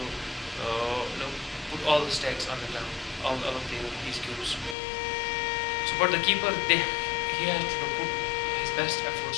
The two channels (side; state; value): right; drops out; at 4.8 s